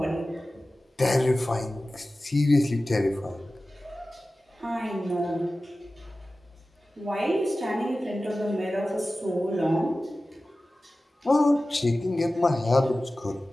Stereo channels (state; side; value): normal; both; correlation 0.96